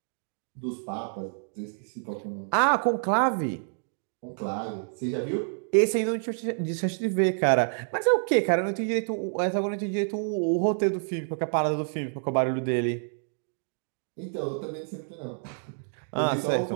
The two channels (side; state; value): left; silent; 59 dB below the other